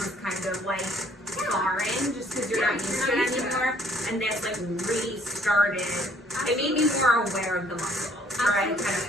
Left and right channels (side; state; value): both; normal; correlation 0.62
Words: kind of like foreign, just because you're not used to it anymore. And this like restarted. It made me more aware of the muscles, or I kind of